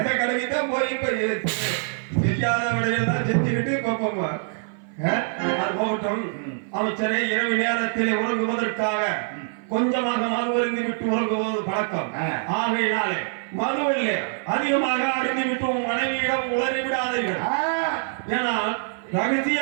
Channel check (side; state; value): left; silent; 57 dB below the other